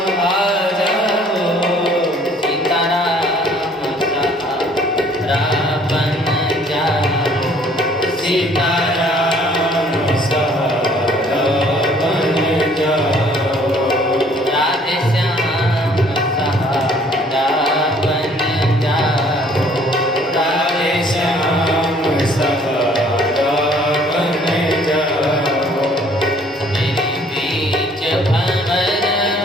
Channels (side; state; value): both; normal; correlation 0.58